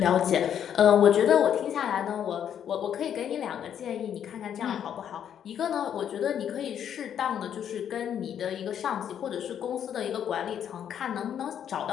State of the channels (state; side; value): quieter; right; 9.2 dB